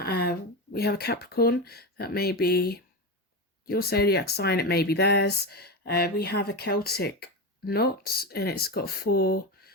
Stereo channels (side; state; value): both; normal; correlation 0.18